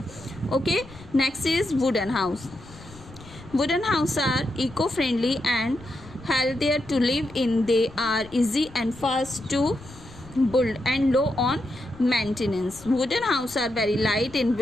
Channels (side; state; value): left; noise; rumble, 20 dB below the sound